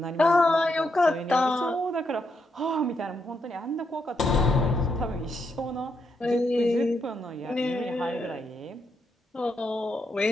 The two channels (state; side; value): normal; both; correlation 0.80